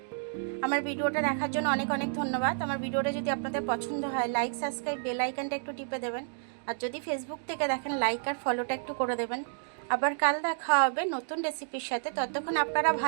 আমার ভিডিওটা দেখার জন্য অনেক অনেক ধন্যবাদ। আমার ভিডিওটা যদি আপনাদের পছন্দ হয়, লাইক, সাবস্ক্রাইব, বেল আইকনটা একটু টিপে দেবেন। আর যদি ফেসবুক থেকে দেখেন, লাইক আর ফলোটা একটু করে দেবেন। আবার কাল দেখা হবে নতুন রেসিপির সাথে। ততক্ষণ আপনারা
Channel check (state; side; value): silent; left; digital silence